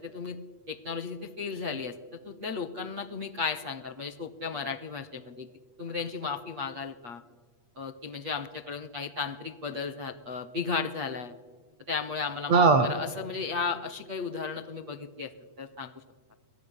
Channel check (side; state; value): left; late; 8.4 ms